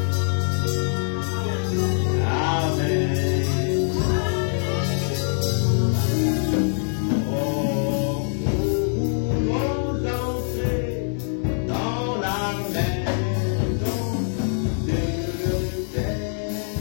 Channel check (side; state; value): right; silent; digital silence